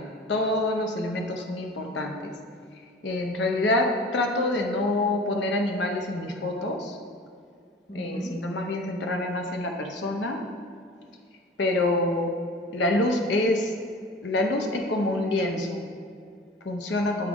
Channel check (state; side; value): normal; both; correlation 0.40